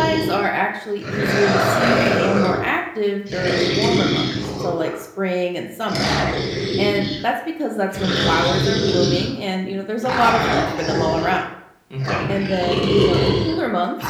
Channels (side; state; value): both; identical; correlation 1.00